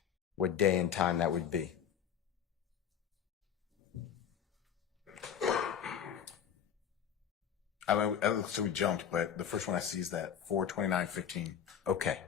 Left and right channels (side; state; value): right; quieter; 8.5 dB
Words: what day and time that would be. I mean, it looks like we jumped, but the first one I see is that 4/29/15. Okay.